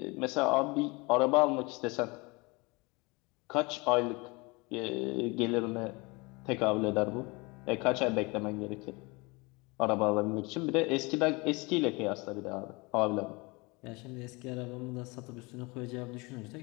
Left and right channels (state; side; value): quieter; right; 26.3 dB